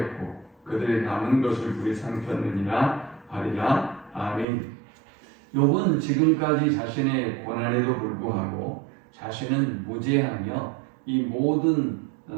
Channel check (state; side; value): drops out; left; at 4.5 s